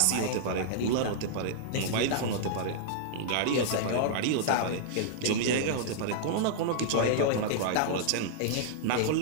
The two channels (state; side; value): different; both; correlation -0.01